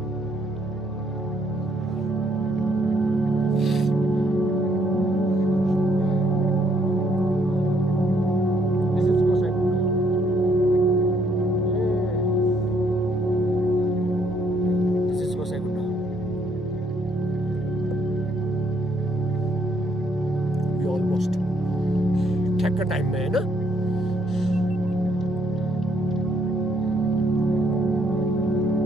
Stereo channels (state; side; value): normal; both; correlation 0.69